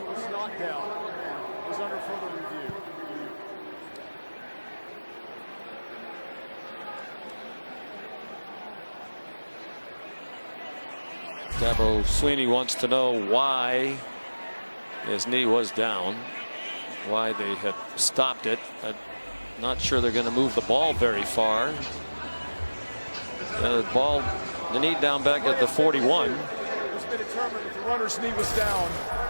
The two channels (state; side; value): inverted; both; correlation -1.00